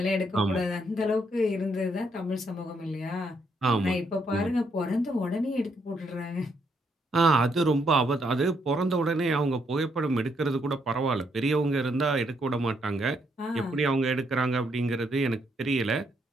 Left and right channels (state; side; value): normal; both; correlation 0.75